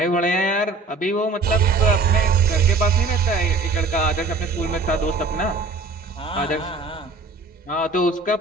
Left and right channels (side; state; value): left; quieter; 3.6 dB